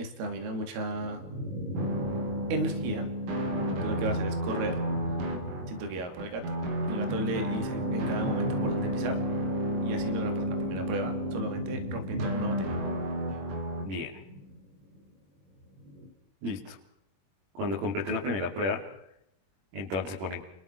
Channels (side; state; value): left; late; 22 ms